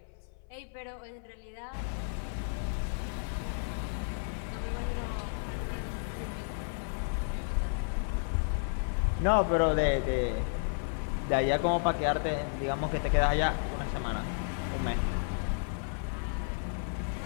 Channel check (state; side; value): silent; right; 56 dB below the other